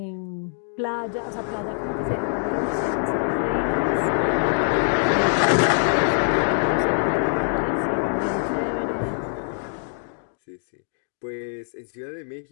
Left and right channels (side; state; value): right; silent; digital silence